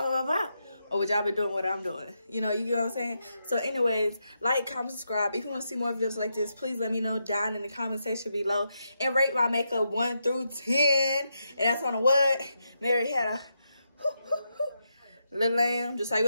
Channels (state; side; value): inverted; both; correlation -0.83